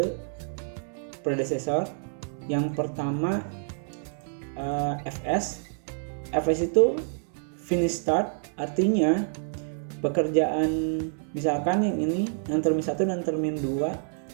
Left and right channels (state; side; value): silent; left; 60 dB below the other